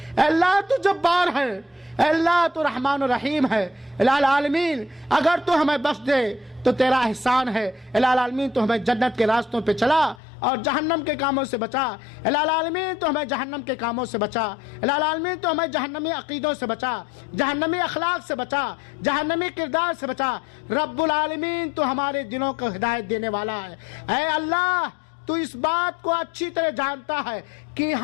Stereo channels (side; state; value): right; drops out; at 10.2 s